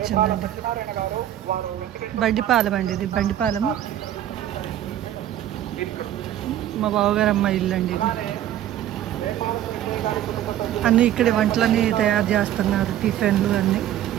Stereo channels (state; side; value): quieter; left; 11.9 dB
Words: బండిపాలెం అండి, ఇది బండిపాలెము. మా బావగారు అమ్మ ఇల్లు అండి ఇది. అన్నీ ఇక్కడ వంటలన్నీ తయారు చేస్తున్నారు, టిఫిన్లు అన్నీ.